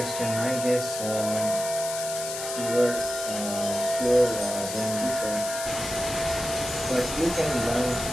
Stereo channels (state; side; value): noise; left; hiss, 6 dB below the sound